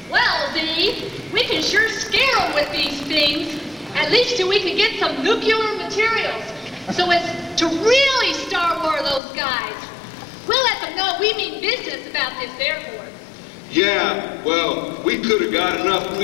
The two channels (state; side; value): drops out; right; at 9.2 s